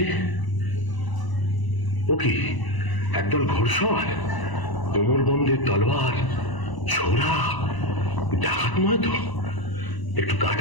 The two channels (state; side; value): late; right; 1.0 ms